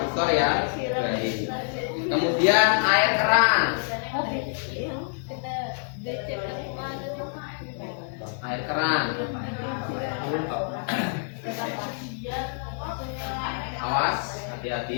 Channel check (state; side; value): silent; right; 60 dB below the other